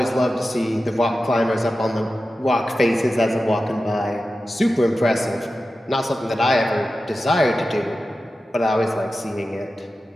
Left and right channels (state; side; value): normal; both; correlation 0.93